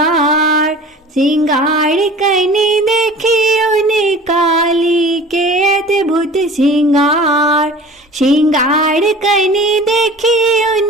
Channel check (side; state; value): both; normal; correlation 0.42